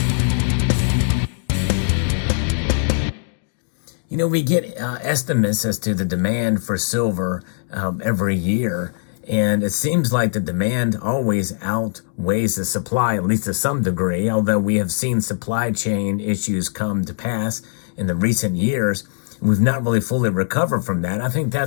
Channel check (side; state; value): right; silent; digital silence